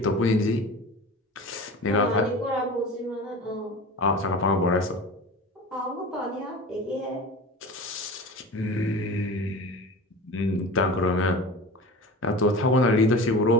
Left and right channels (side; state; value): both; normal; correlation 0.34